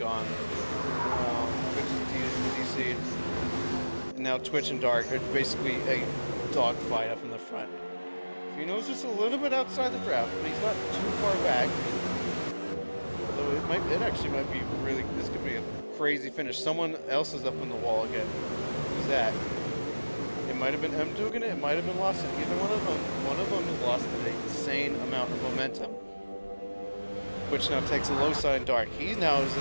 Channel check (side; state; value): both; inverted; correlation -1.00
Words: And now Twitch and Dark are basically a dogfight up in the front. Fino's just a little bit outside the draft, but he's not too far back. Although it actually might be really, this could be a crazy finish. Someone else is up on the wall again. Who's that? It might have been M doing it, it might have been Lawson. Either one of them. One of them has lost an insane amount of momentum. Which now takes a low side Dark. He now is